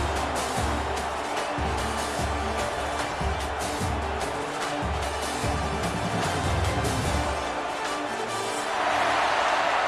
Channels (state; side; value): identical; both; correlation 1.00